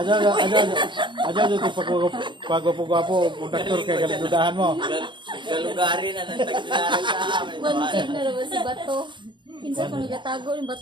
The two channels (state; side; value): late; left; 0.23 ms